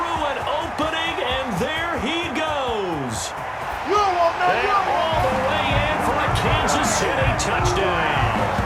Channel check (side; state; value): both; identical; correlation 1.00